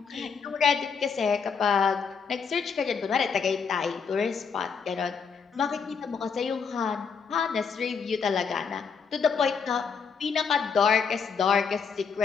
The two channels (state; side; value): quieter; right; 6.0 dB